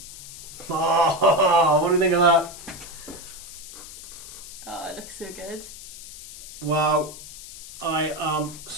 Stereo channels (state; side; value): noise; left; hiss, 14 dB below the sound